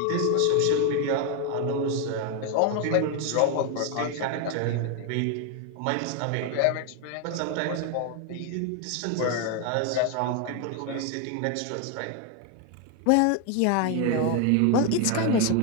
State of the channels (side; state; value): both; different; correlation 0.01